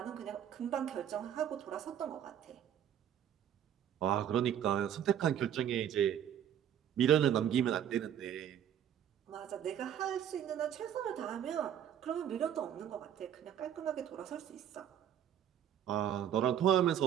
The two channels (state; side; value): quieter; left; 9.9 dB